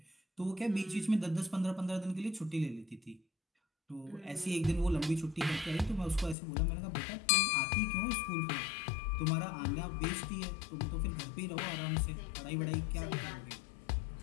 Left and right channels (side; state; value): right; drops out; at 6.4 s